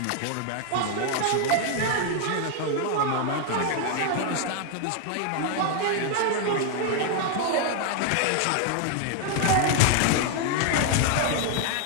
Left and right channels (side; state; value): both; different; correlation 0.00